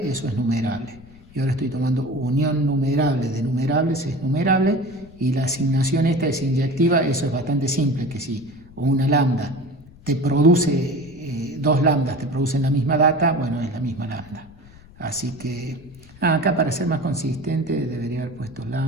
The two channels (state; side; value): noise; left; rumble, 23 dB below the sound